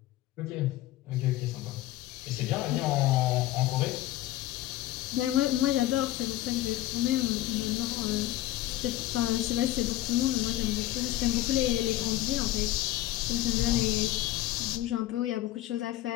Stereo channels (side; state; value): right; quieter; 15.2 dB